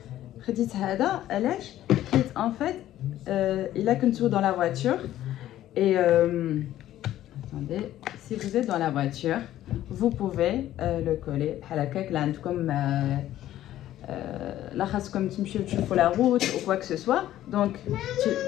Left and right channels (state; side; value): quieter; right; 13.2 dB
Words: en fait, il a qu'un tour dans la voiture. Et attendez, si vous êtes dans la voiture, vous pouvez le coller à la caque comme là خاصكم تمشيو تشوفوا la route ou quoi que ce soit. Donc